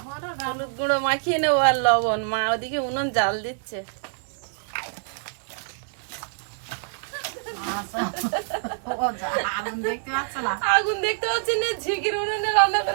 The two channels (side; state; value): left; silent; digital silence